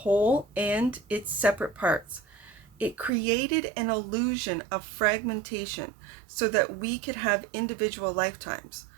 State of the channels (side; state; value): left; drops out; at 3.1 s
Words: and its separate parts. It created an illusion of fragmentation so that we could have individual lifetimes,